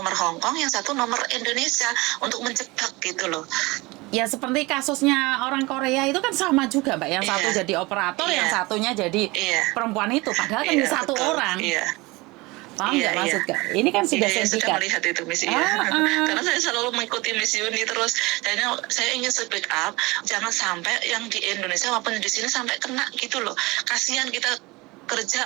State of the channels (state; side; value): quieter; left; 23.1 dB